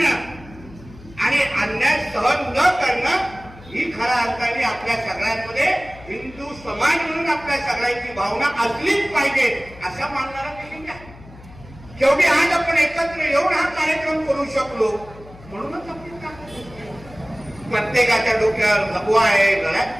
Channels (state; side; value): noise; left; hum, 20 dB below the sound